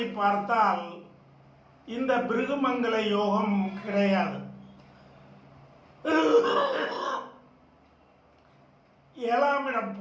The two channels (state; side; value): identical; both; correlation 1.00